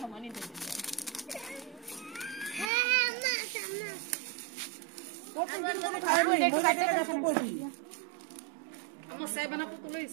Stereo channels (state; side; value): drops out; left; at 2.7 s